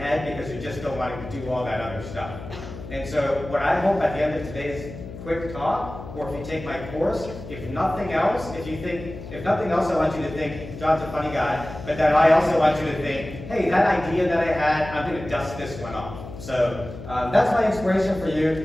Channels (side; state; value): left; noise; hum, 12 dB below the sound